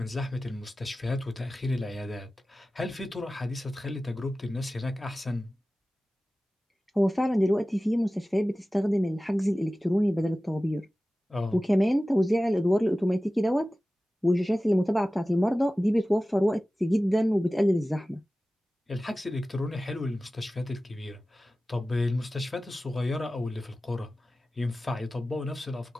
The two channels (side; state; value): both; normal; correlation 0.96